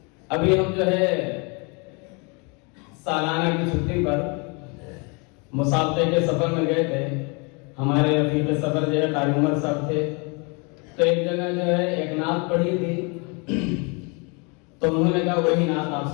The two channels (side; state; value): right; quieter; 32.0 dB